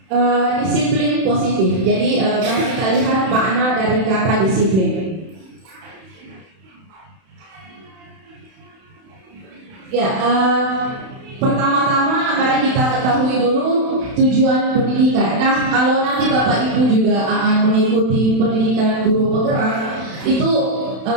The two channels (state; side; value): late; left; 31 ms